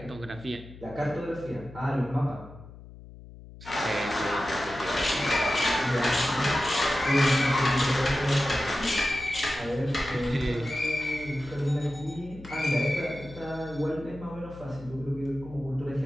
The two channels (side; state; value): left; noise; hum, 17 dB below the sound